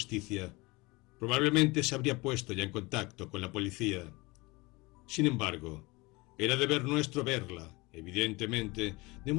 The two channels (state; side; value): quieter; right; 24.0 dB